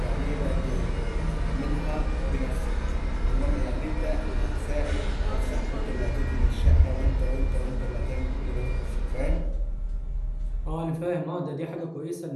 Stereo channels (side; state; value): both; identical; correlation 1.00